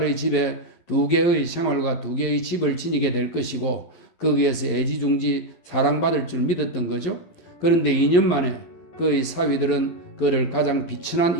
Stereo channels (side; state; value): right; late; 12 ms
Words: 집에 2개의 생활과 2개의 집을 지니게 될 것이고 거기에서 애지중지 사랑받을 줄 믿었던 거죠. 그런데 2년 만에 그의 사위들은 그를 가장 비천한